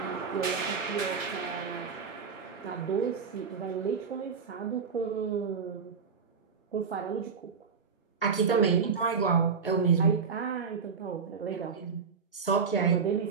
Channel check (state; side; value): quieter; left; 5.8 dB